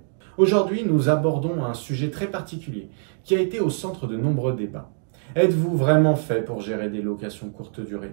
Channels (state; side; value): silent; left; digital silence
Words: Aujourd'hui, nous abordons un sujet très particulier qui a été au centre de nombreux débats. Êtes-vous vraiment fait pour gérer des locations courte